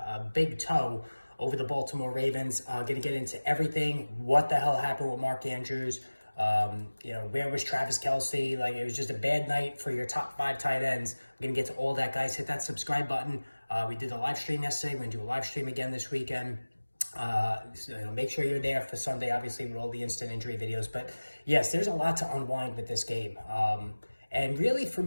big toe over the Baltimore Ravens. Going to get into everything. What the hell happened with Mark Andrews? Where was Travis Kelce? Like, it was just a bad night for your top 5 tight ends. We're going to get to all that, guys. Hit that subscribe button. We did a live stream yesterday. We're going to do a live stream again this weekend. Make sure you're there for Sunday, obviously, with all the instant injury videos. But yes, there's a lot to unwind with this game. And really, for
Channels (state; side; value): inverted; both; correlation -1.00